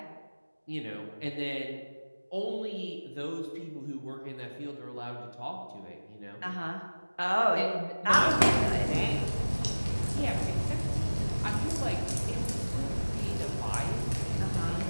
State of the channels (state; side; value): inverted; both; correlation -1.00